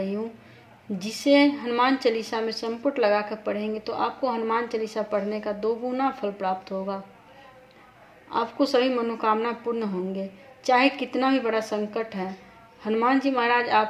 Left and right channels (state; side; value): identical; both; correlation 1.00